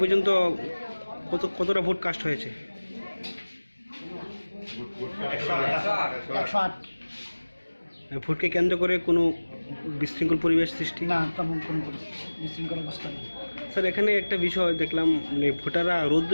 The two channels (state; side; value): inverted; both; correlation -1.00